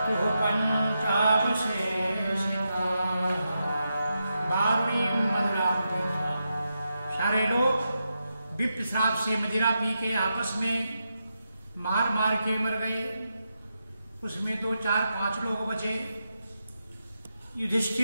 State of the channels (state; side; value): inverted; both; correlation -0.86